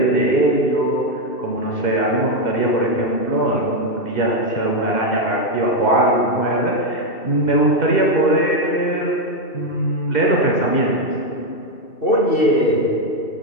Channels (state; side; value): late; right; 2.7 ms